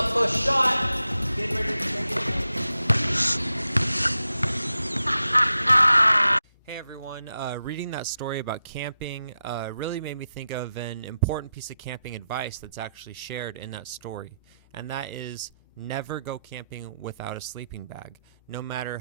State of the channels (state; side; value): inverted; both; correlation -0.89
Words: close shot. Get ready to take it. Hey everyone, reading that story about camping really made me think of an important piece of camping advice that's actually shared in that story, and that is never go camping without a sleeping bag. No matter